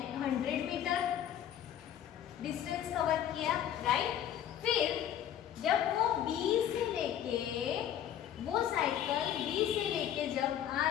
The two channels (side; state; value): right; quieter; 10.5 dB